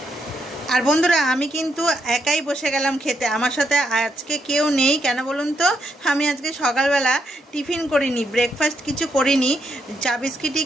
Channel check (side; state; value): both; normal; correlation 0.78